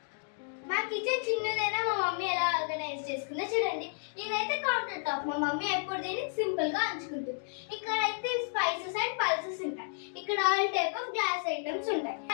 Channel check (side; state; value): right; silent; digital silence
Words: మా kitchen చిన్నదైనా మా mummy ఎలా organise చేసుకుందో చూడండి. ఇదైతే కౌంటర్ టాప్. మా మమ్మీ ఎప్పుడు దీన్ని సింపుల్ గా ఉంచుకుంటుంది. ఇక్కడ అయితే స్పైసెస్ అండ్ పల్సెస్ ఉంటాయి. ఇక్కడ all type of glass items ఉంటాయి.